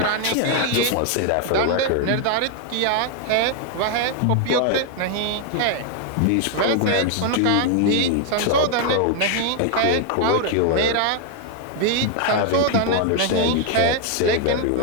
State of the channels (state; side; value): different; both; correlation 0.00